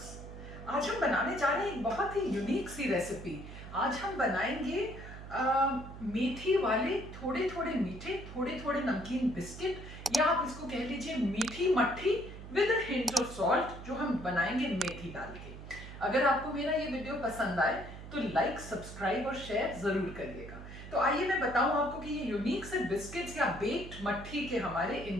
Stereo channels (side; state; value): right; noise; hum, 12 dB below the sound